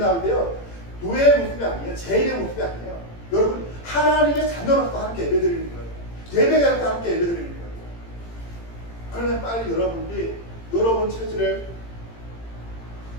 때요, 노예의 모습이 아니에요. 죄인의 모습이 아니에요. 여러분, 하나님의 자녀로서 함께 예배 드리는 거예요. 예배자로서 함께 예배 드리는 거예요. 그러면 빨리 여러분들이 여러분 체질을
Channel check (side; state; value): right; late; 18 ms